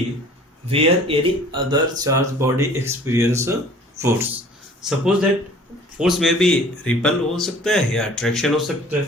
where any other charge body experience force. Suppose that force में भी रिपल हो सकता है या अट्रैक्शन हो सकता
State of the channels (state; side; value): normal; both; correlation 0.49